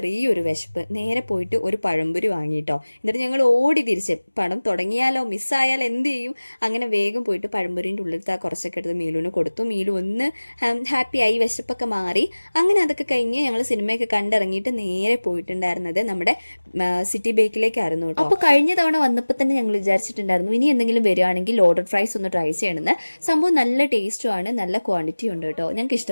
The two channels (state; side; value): inverted; both; correlation -1.00